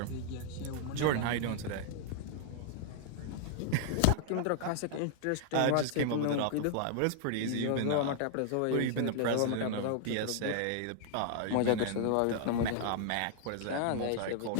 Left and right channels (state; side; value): different; both; correlation 0.00